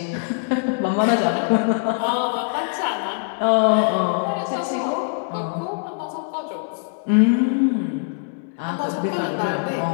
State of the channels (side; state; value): right; silent; 63 dB below the other